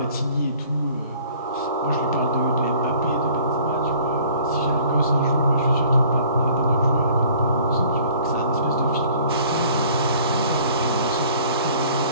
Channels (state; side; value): inverted; both; correlation -0.50